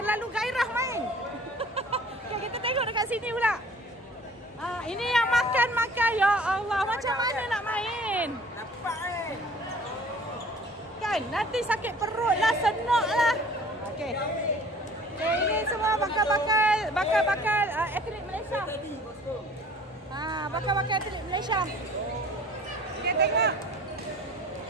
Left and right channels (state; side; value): normal; both; correlation 0.49